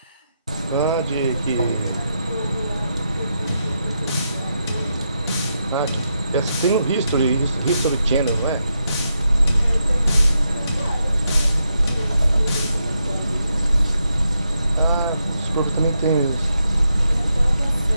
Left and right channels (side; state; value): both; inverted; correlation -0.83